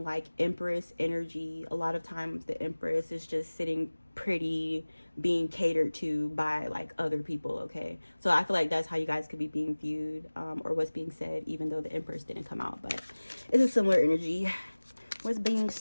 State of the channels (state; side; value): inverted; both; correlation -1.00